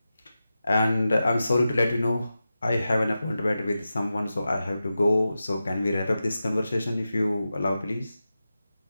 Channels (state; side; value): inverted; both; correlation -0.92